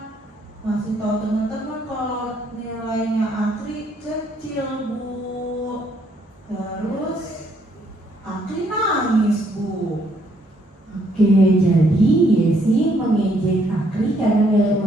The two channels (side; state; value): both; normal; correlation 0.69